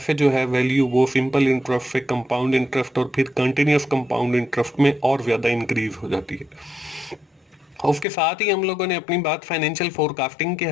जो है वैल्यू वो सिंपल इंटरेस्ट से कंपाउंड इंटरेस्ट और फिर कंटिन्यूस कंपाउंड इंटरेस्ट में और ज़्यादा इंक्रीज हो जाती है। उसके साथ ही हम लोगों ने अपनी बात फाइनेंशियल फोरकास्टिंग के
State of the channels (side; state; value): right; drops out; at 8.1 s